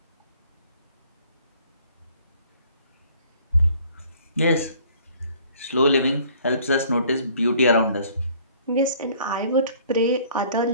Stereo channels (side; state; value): both; inverted; correlation -0.56